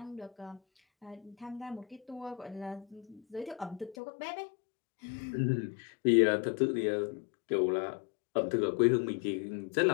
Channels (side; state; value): right; drops out; at 4.0 s